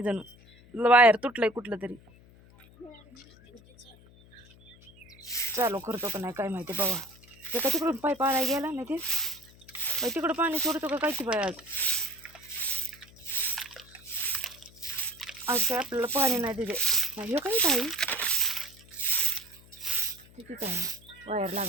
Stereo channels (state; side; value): noise; left; hum, 24 dB below the sound